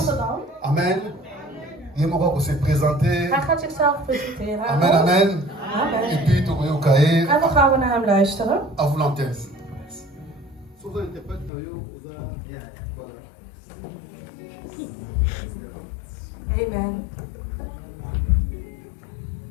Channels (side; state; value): right; drops out; at 11.5 s